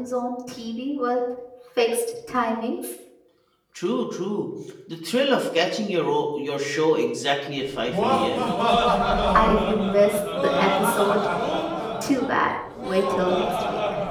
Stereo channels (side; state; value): both; identical; correlation 1.00